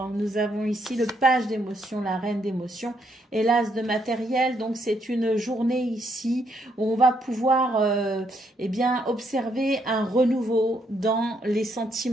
nous avons ici le page d'émotions, la reine d'émotions et l'as de matériel. Donc c'est une journée ici où on va pouvoir eh bien, observer un renouveau dans les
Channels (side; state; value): both; normal; correlation 0.74